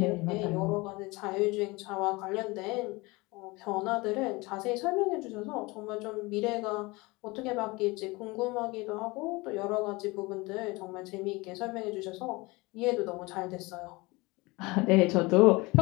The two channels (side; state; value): right; quieter; 23.7 dB